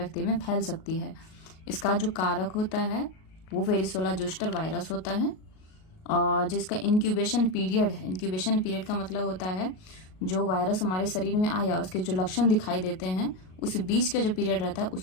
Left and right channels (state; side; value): late; right; 38 ms